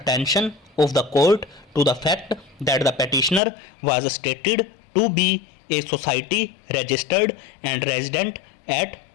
of the court to the fact that the petitioner was stated to be a society registered and resident at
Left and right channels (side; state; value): right; drops out; at 3.4 s